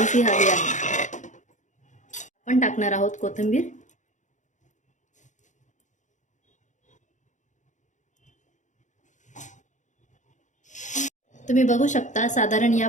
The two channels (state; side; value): late; right; 0.36 ms